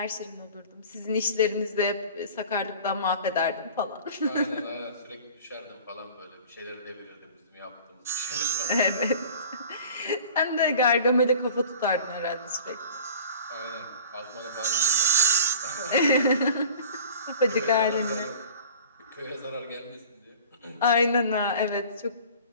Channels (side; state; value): both; inverted; correlation -0.43